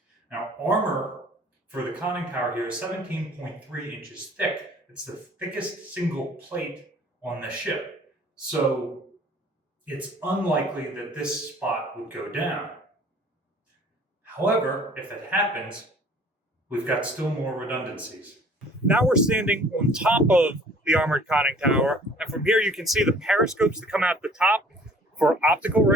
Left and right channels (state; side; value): normal; both; correlation 0.52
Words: Now, armor for the conning tower here is 17.3 inches thick. It's the thickest single plate on the ship. So it's unlikely that this spot would go down. However, if that happens, we've got still more redundancies. Now we're standing on top of the armored conning tower, and from here you can see the periscopes that come out the top for optical